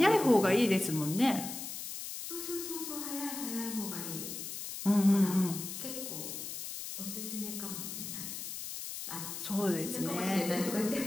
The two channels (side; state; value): left; noise; hiss, 7 dB below the sound